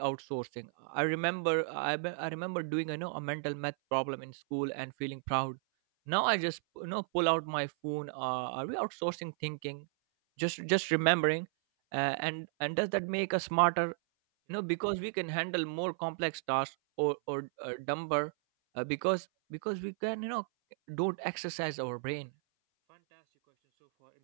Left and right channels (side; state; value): left; silent; 55 dB below the other